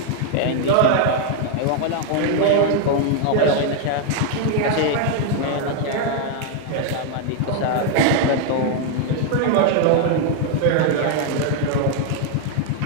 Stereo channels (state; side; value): different; both; correlation 0.00